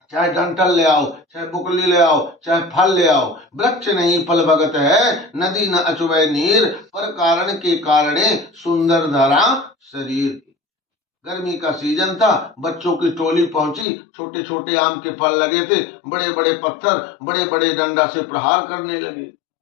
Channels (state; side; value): drops out; right; at 13.9 s